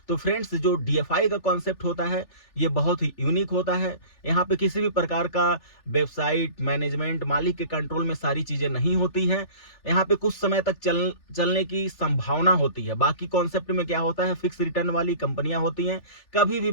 तो फ्रेंड्स, जो डीएफआई का कॉन्सेप्ट होता है ये बहुत ही यूनिक होता है। यहाँ पे किसी भी प्रकार का वेबसाइट मैनेजमेंट मालिक के कंट्रोल में सारी चीजें नहीं होती हैं। यहाँ पे कुछ समय तक चलने की संभावना होती है। बाकी कॉन्सेप्ट में क्या होता है, फिक्स रिटर्न वाली कंपनियां होती हैं, कभी भी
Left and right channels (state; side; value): late; right; 3.4 ms